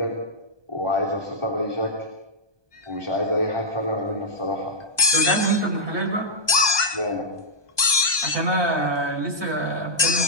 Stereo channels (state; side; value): late; left; 1.2 ms